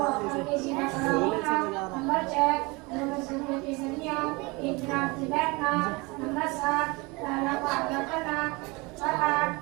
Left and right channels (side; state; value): left; quieter; 25.9 dB